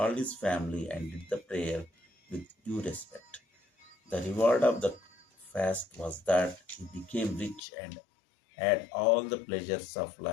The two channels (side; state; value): right; drops out; at 7.6 s